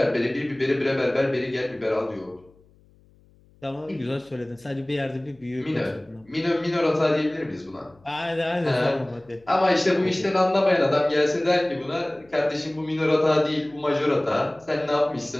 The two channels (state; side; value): noise; left; hum, 30 dB below the sound